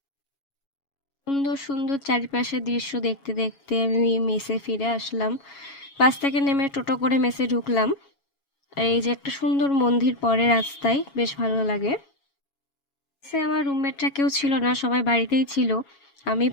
সুন্দর সুন্দর চারিপাশের দৃশ্য দেখতে দেখতে আমি মেসে ফিরে আসলাম। বাস থেকে নেমে টোটো করে মেসে ঢুকলাম। আর এই যে একটা সুন্দর মন্দির পরে রাস্তায়, বেশ ভালো লাগে। সে আমার রুমমেটরা কেউ ছিল না, সবাই বাড়িতেই ছিল, আমি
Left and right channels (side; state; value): right; late; 7.2 ms